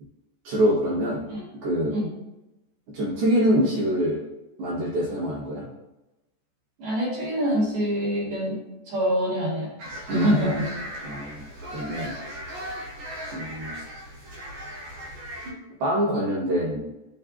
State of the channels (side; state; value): left; late; 14 ms